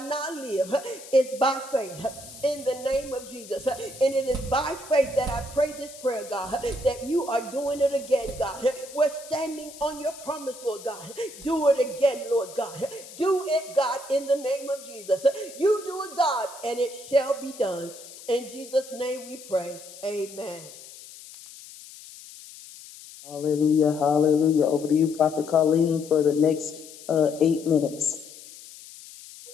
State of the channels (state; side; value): noise; left; hiss, 17 dB below the sound